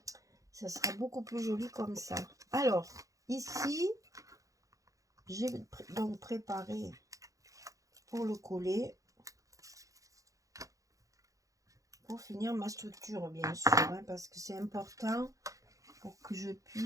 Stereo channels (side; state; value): left; late; 0.16 ms